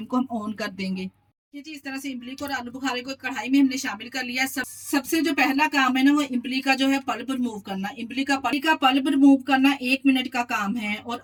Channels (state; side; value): identical; both; correlation 1.00